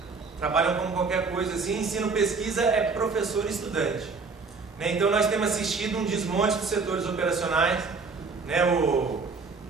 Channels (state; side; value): quieter; left; 4.5 dB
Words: trabalham como qualquer coisa assim, ensino-pesquisa é professor e estudante. Né? Então nós temos assistido um desmonte dos setores operacionais, né? O